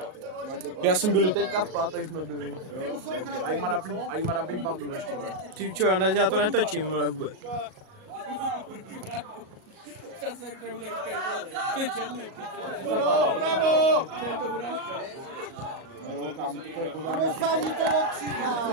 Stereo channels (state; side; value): late; left; 38 ms